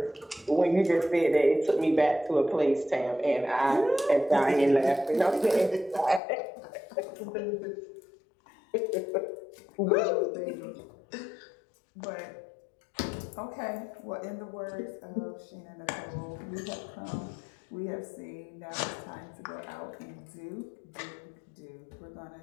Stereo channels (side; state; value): right; drops out; at 6.2 s